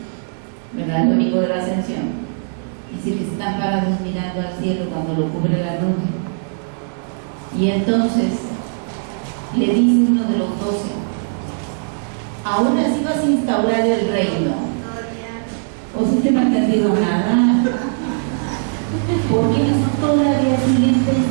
¿verdad? El domingo de la ascensión, dice que están parados mirando al cielo cuando lo cubre la nube. Y entonces le dice uno de los 12, ¿aún así vas a instaurar el reino? ¿O si te no ha entendido nada? Porque ellos todavía siguen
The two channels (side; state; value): left; silent; digital silence